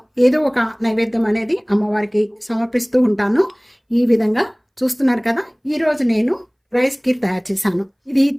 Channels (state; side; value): identical; both; correlation 1.00